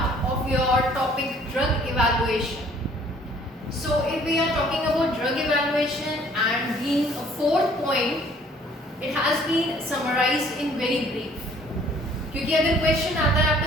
of your topic drug evaluation. So if we are talking about drug evaluation and being a fourth point, it has been summarized in very brief. क्योंकि अगर question आता है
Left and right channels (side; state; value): both; normal; correlation 0.57